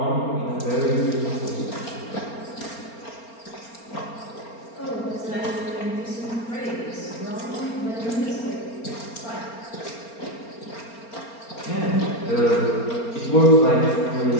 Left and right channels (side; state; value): right; late; 4.4 ms